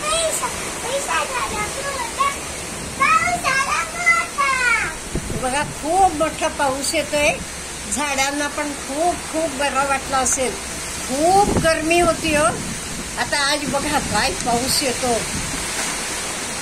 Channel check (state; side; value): identical; both; correlation 1.00